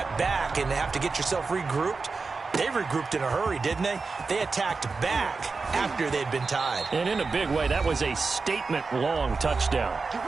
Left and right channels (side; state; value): left; quieter; 4.3 dB